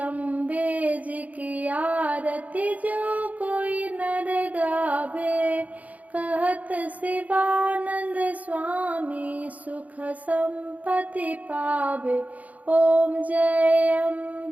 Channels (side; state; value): left; late; 0.073 ms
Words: जी की आरती जो कोई नर गावे। कहत शिवानंद स्वामी सुख संपत्ति पावे। ओम जय